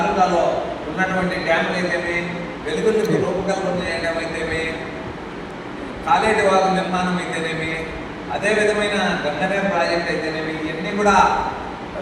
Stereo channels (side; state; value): both; identical; correlation 1.00